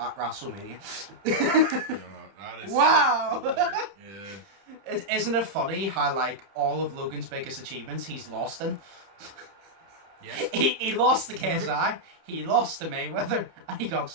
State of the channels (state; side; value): late; left; 31 ms